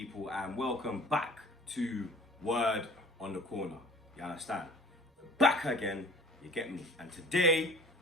and welcome back to Word on the Corner. You understand? Back again, you get me. And today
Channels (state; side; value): normal; both; correlation 0.47